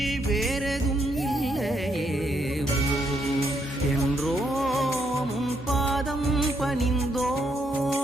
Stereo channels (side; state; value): both; normal; correlation 0.75